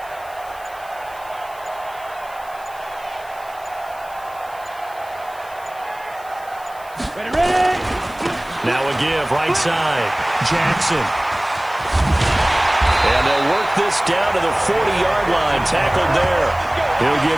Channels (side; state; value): left; noise; hiss, 23 dB below the sound